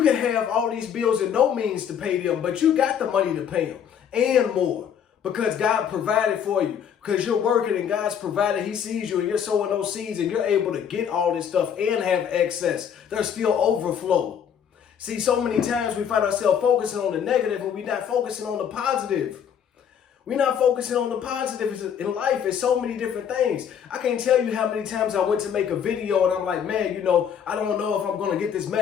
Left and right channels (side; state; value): right; quieter; 8.3 dB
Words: can have all these bills and no means to pay them, but you got the money to pay them and more. Because God provided for you. Because you're working and God's provided. He sees you and you're sowing those seeds and you're able to get all this stuff and have excess. There's still overflow. See, so many times we find ourselves focusing on the negative and we're not focusing on the positive. We're not focusing on the positive in life. It's so many different things. I can't tell you how many times I went to make a video and I'm like, man, I don't know if I'm going to get this